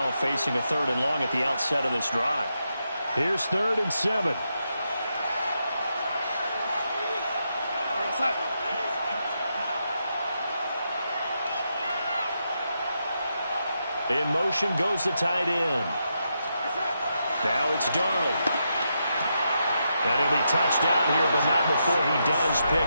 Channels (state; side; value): inverted; both; correlation -0.83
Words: facing a 3rd and long at the outset of this drive. Here's 3rd and 7. In motion goes the tight end. Now it's Darnold. And he'll be touched out here, but not before he does